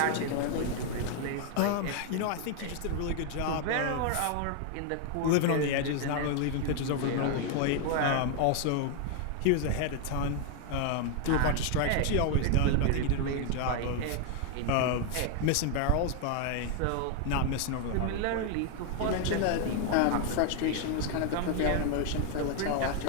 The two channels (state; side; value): different; both; correlation 0.00